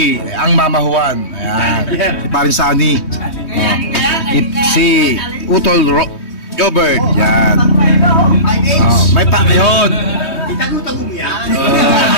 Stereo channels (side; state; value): right; late; 3.2 ms